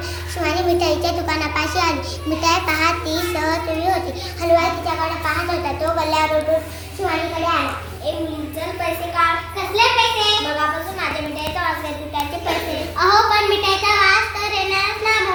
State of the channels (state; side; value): identical; both; correlation 1.00